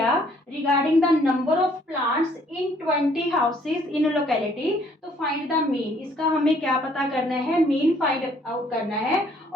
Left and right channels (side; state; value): both; normal; correlation 0.63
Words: regarding the number of plants in 20 houses in locality. तो find the mean, इसका हमें क्या पता करना है, मीन फाइंड आउट करना है.